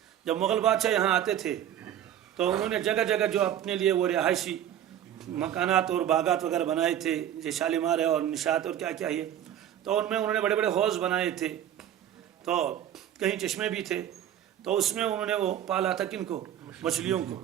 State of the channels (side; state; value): left; quieter; 10.8 dB